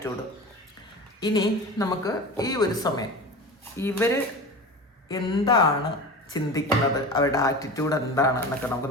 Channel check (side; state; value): both; normal; correlation 0.31